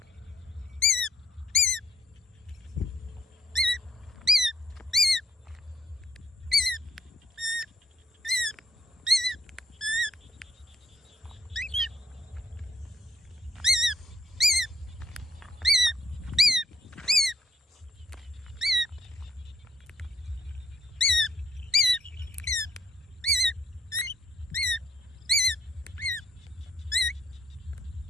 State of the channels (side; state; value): both; normal; correlation 0.68